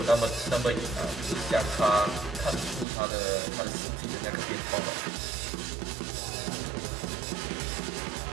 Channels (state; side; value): drops out; left; at 2.9 s